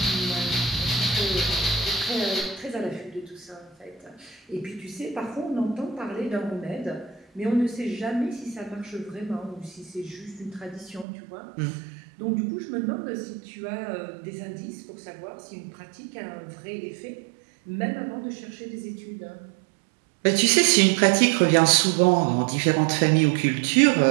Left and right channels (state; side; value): drops out; left; at 11.1 s